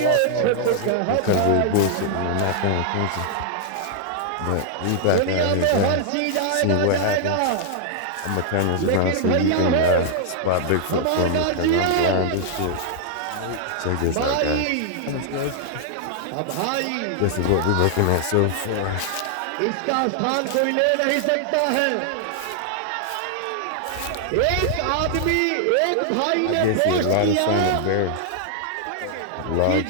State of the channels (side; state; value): both; different; correlation 0.00